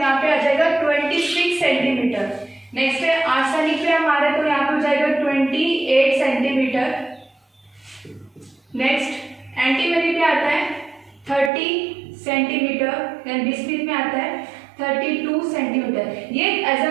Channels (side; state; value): left; drops out; at 11.5 s